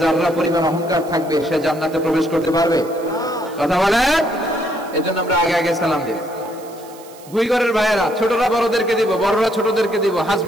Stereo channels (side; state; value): right; noise; hiss, 22 dB below the sound